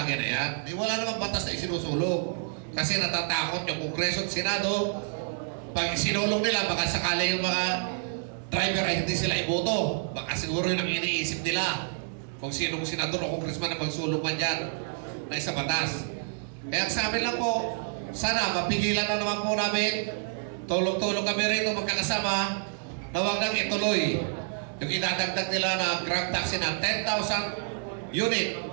na yan. Wala namang batas na isinusulong. Kasi natatakot yung Kongreso at Senado. Pag isinulong nila, baka sakali yung mga driver ay hindi sila iboto. Baka siguro yun ang iniisip nila. Kung sinong senador o congressman na magsulong man dyan na isa batas. Kaya sa amin lang po, sana mapigilan na naman po namin. Tulong-tulong kami rin magkakasama na huwag nang ituloy yung idadagdag nila na Grab taxi na 10,000 unit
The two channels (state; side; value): silent; left; digital silence